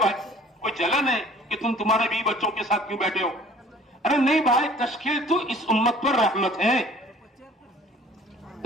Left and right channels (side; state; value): both; normal; correlation 0.51